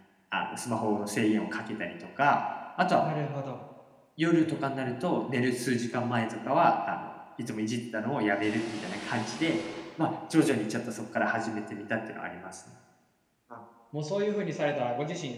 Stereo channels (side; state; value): both; identical; correlation 1.00